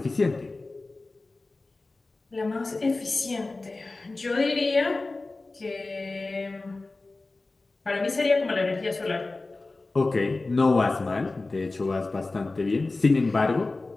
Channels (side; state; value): right; quieter; 3.3 dB